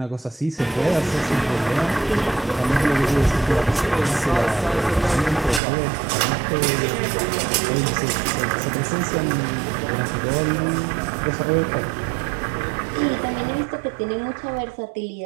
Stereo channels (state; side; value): drops out; left; at 5.6 s